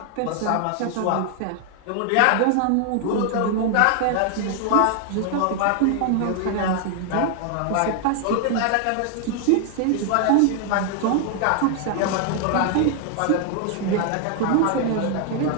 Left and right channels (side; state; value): both; different; correlation 0.00